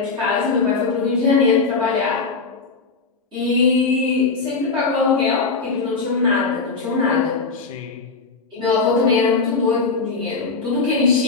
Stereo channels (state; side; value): quieter; right; 4.4 dB